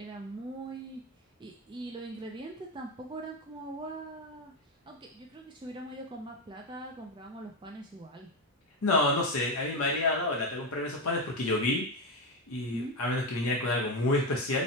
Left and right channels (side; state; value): both; normal; correlation 0.12